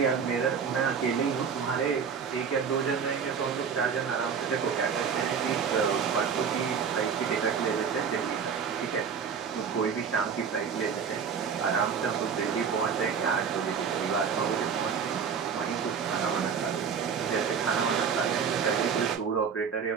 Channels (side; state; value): left; quieter; 6.6 dB